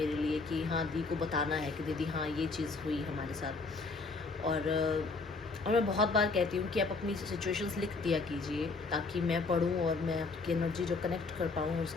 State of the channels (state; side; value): quieter; right; 4.0 dB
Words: लिए कि हाँ दी को बताना है कि दीदी हाँ ये चीज़ हुई हमारे साथ। और मैं बहुत बार कहती हूँ कि आप अपनी सिचुएशंस लिख दिया कीजिए, ताकि मैं पढ़ूँ और मैं आपकी एनर्जी जो कनेक्ट कर पाऊँ,